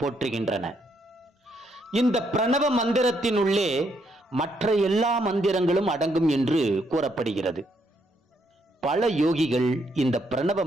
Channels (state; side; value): normal; both; correlation 0.74